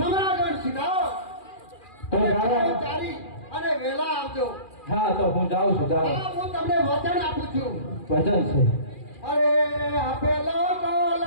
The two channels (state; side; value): late; right; 2.4 ms